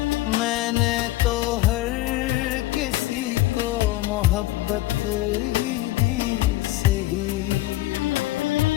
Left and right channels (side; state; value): right; quieter; 17.4 dB